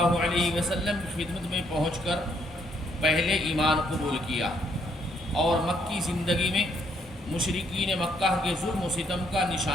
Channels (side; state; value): both; normal; correlation 0.70